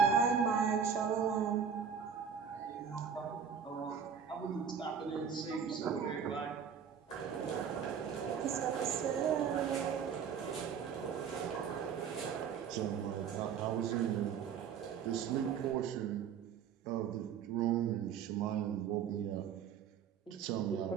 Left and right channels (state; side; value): quieter; left; 7.2 dB